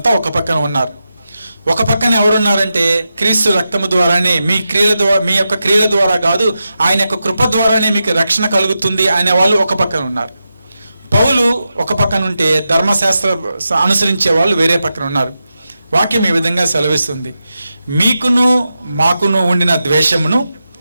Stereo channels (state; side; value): inverted; both; correlation -0.89